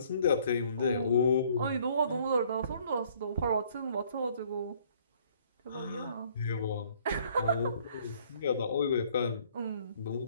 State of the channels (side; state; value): both; inverted; correlation -0.60